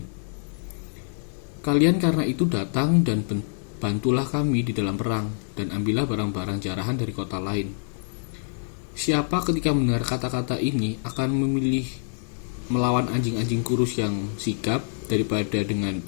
Kalian karena itu datang dan bantulah kami di dalam perang, dan ambillah barang-barang jarahan dari kota lain. Siapa ketika mendengar kata-kata ini akan memilih melawan anjing-anjing kurus yang sigap daripada dengan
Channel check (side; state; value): right; silent; digital silence